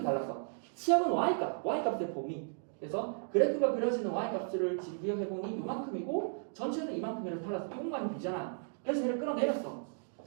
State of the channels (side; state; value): left; silent; digital silence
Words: 달랐어. 치역은 y값의 범위. 그래서 그래프가 그려지는 y값을 비교해보니 이만큼이고 전체는 이만큼이라서 달라서 이것만이 비잖아. 그래서 얘를 끌어내렸어.